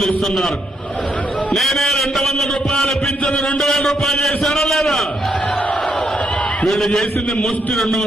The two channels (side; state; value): both; normal; correlation 0.77